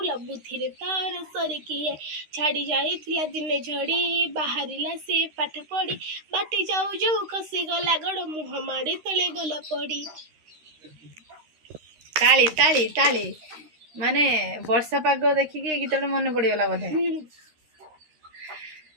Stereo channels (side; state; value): left; late; 13 ms